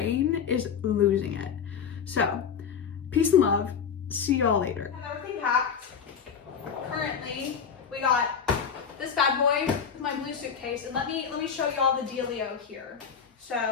is losing it. So peace and love. See y'all later. I have everything packed. Currently, we got this bad boy, my blue suitcase, and let me show y'all the dealio here.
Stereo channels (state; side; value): quieter; right; 6.9 dB